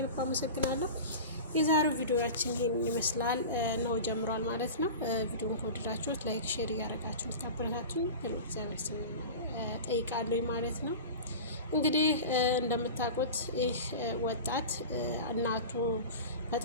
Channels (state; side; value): inverted; both; correlation -0.31